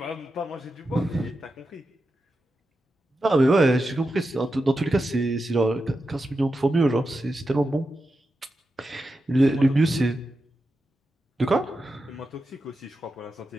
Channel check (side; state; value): both; normal; correlation 0.89